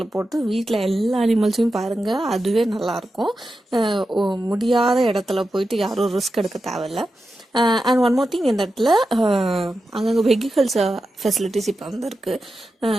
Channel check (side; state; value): both; normal; correlation 0.90